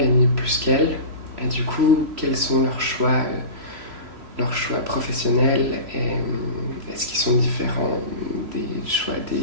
plus qu'elles, et du coup quels sont leurs choix professionnels, et est-ce qu'ils sont différents des choix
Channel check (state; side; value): late; left; 3.0 ms